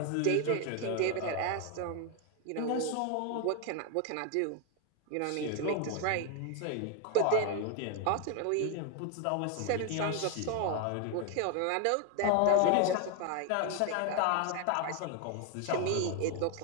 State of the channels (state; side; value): different; both; correlation 0.01